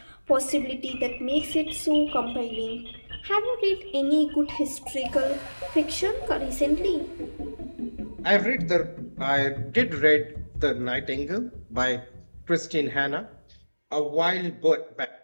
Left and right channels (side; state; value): both; inverted; correlation -1.00